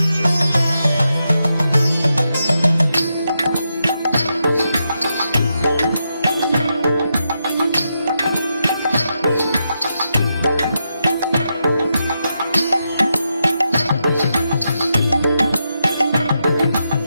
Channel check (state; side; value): inverted; both; correlation -0.85